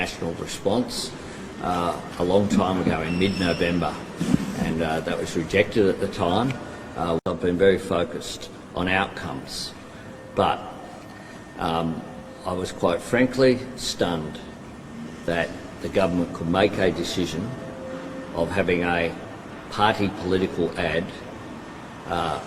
response a long time ago in mid-November, and that was rejected at the time. I've been very focused on outcomes, but I was quite frankly stunned that the government could make a decision of having a party political ad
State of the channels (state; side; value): identical; both; correlation 1.00